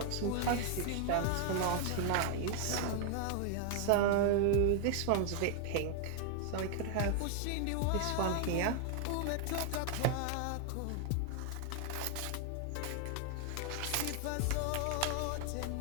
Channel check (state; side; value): different; both; correlation 0.00